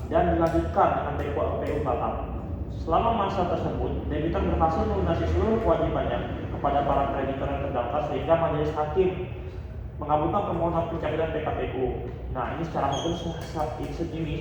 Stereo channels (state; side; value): identical; both; correlation 1.00